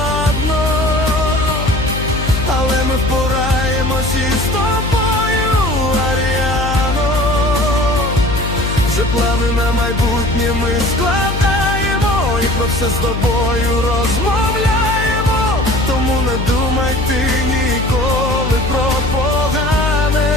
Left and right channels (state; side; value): noise; left; hum, 4 dB below the sound